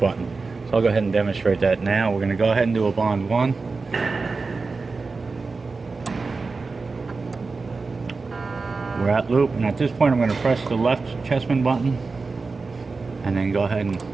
So I'll go ahead and demonstrate that now. We're going to go ahead and do a bond 1. We're at loop, and at this point I'm going to press the left Chessman button and then go ahead and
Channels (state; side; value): quieter; left; 4.1 dB